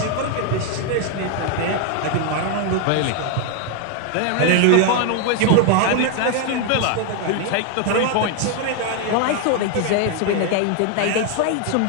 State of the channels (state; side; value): different; both; correlation 0.01